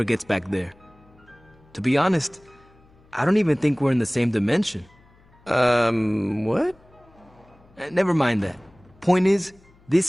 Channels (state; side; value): noise; left; hum, 29 dB below the sound